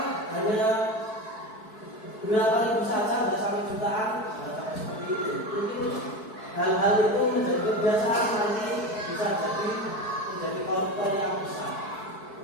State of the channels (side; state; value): right; late; 4.6 ms